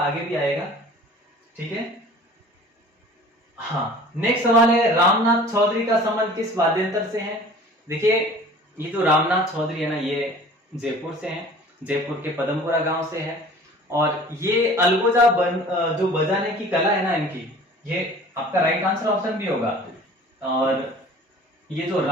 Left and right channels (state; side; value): normal; both; correlation 0.46